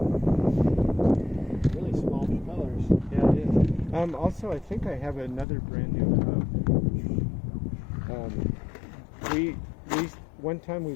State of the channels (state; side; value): drops out; right; at 5.5 s